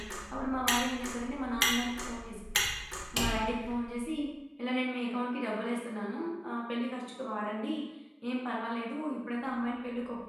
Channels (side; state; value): both; identical; correlation 1.00